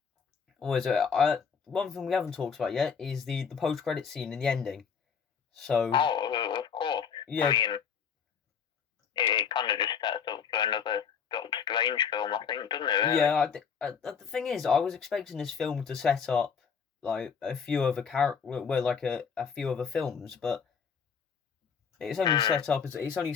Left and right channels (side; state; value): right; quieter; 6.6 dB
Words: what is it? One thing we haven't talked about yet is the post-credit scene in the ending. So. Oh, of course. Yeah. I mean, it kind of just sets up for another Doctor Strange film, I think, doesn't it? Really? Yeah. The thing is, I was expecting this film to set up like a few other a few other films, but it's only set up as a